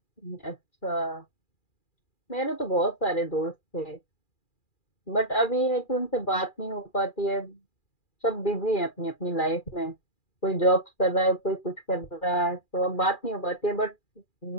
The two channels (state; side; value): late; right; 2.4 ms